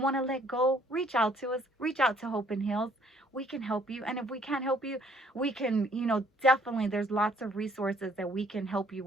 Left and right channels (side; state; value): both; normal; correlation 0.62